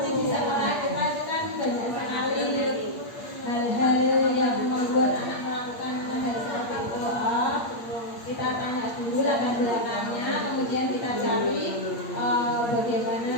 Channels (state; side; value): late; right; 8.5 ms